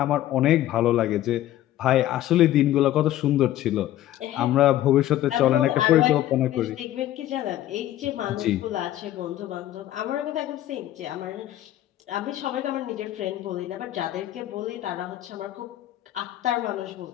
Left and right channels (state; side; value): quieter; right; 13.6 dB